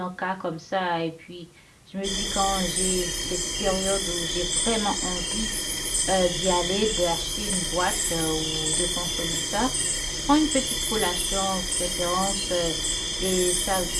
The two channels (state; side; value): identical; both; correlation 1.00